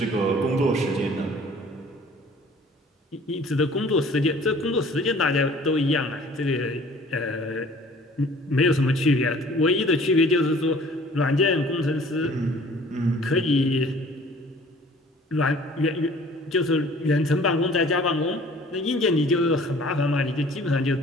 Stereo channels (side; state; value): both; normal; correlation 0.51